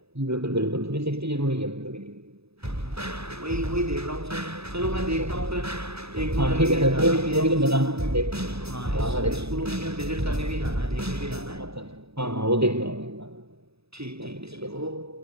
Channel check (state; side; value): late; left; 0.78 ms